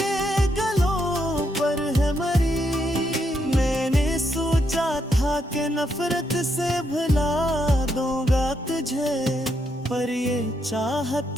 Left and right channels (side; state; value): both; normal; correlation 0.78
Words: गलों पर है मरी। मैंने सोचा था कि नफरत से भुला दूंगा तुझे, पर ये